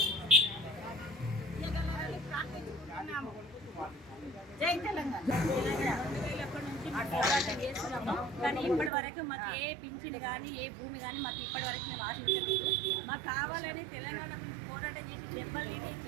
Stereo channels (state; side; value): drops out; left; at 8.9 s